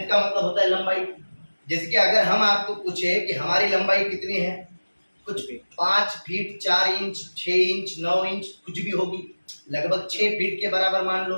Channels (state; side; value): inverted; both; correlation -1.00